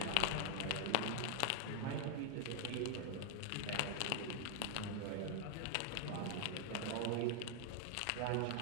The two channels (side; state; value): both; different; correlation 0.00